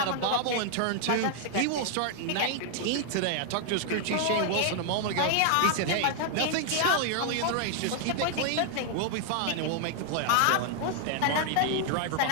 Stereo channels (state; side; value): different; both; correlation 0.00